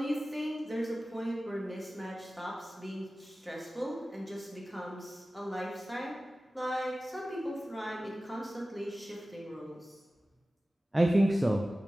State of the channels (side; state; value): both; normal; correlation 0.96